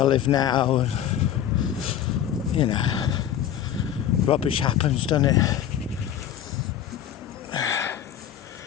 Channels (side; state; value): right; quieter; 10.3 dB